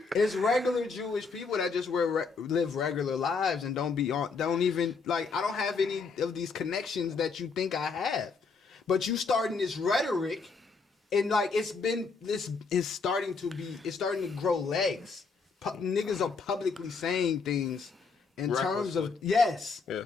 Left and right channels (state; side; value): quieter; right; 4.7 dB